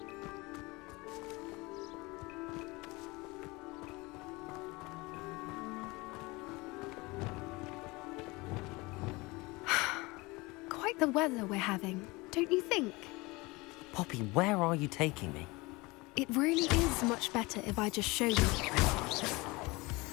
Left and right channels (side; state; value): right; quieter; 23.6 dB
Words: Quite the weather we're having, don't you think? Poppy, where are you taking me? It really is much better if I just show you.